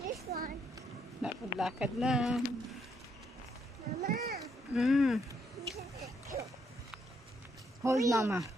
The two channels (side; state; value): both; normal; correlation 0.74